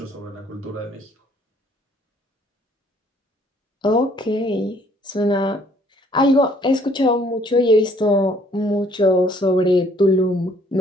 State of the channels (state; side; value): normal; both; correlation 0.61